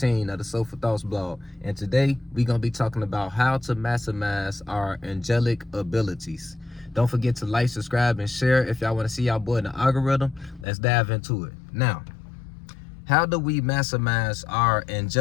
of the Soulful Thoughts blog. And today we gonna be talking about how to maximize our angelic abilities. Don't forget to like, subscribe, and share if y'all want to see y'all boy in the algorithm. Let's dive into it. Now, how do we maximize our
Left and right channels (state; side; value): drops out; right; at 10.7 s